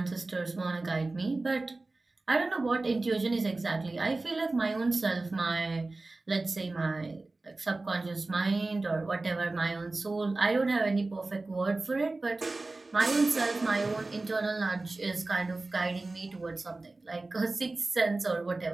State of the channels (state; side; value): quieter; left; 3.2 dB